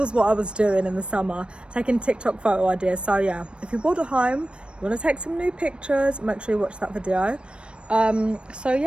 what I was doing in the summer, taking TikTok photo ideas. So yeah, if you're bored at home, you want to take some new pictures, make sure you watch that video. So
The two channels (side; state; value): left; late; 0.057 ms